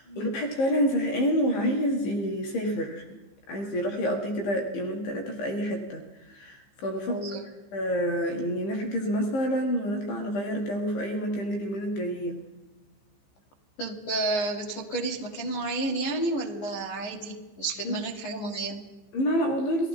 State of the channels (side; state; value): right; late; 15 ms